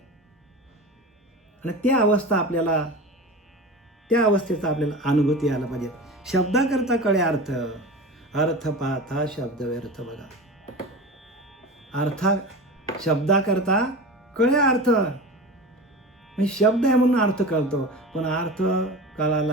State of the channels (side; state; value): both; normal; correlation 0.30